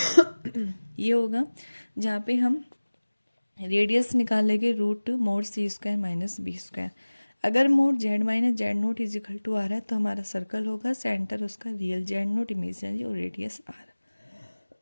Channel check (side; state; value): both; inverted; correlation -1.00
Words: ये होगा, जहाँ पे हम रेडियस निकालेंगे root mod C square minus B square. अगर mod Z minus Z not is equal to R है तो हमारा सर्कल होगा, सेंटर उसका रियल जेड नोट इमेजिनरी और रेडियस आर।